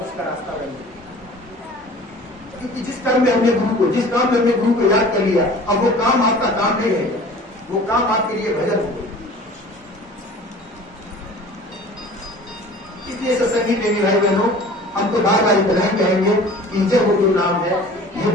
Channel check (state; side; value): normal; both; correlation 0.44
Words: का रास्ता बनेगा। क्योंकि जिस कर्म में हमने गुरु को, जिस काम में हमने गुरु को याद कर लिया, अब वो काम आपका काम नहीं रहेगा, वो काम आपके लिए भजन होगा। इसलिए सत्संगी प्रेमी भाई बहनों, हम तो बार बार इतना ही कहेंगे कि जब वो गुरु नाम है, ये